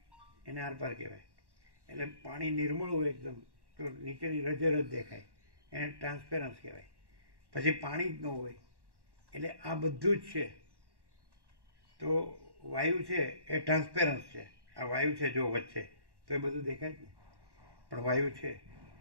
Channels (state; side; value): late; left; 1.1 ms